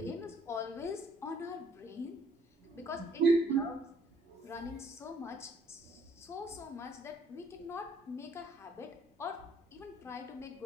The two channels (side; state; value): both; normal; correlation 0.63